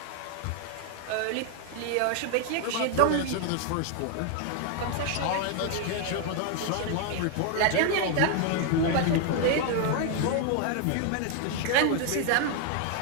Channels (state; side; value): different; both; correlation 0.00